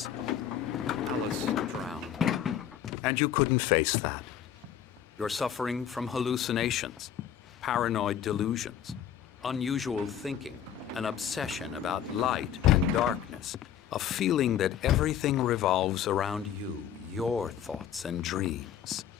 Alice drowned, and you couldn't face that. You're suffering from hallucinations, paranoid delusions, unusual thinking, an obsession about light and darkness, a feeling that everything revolves around you, your thoughts and dreams.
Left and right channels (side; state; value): right; quieter; 9.6 dB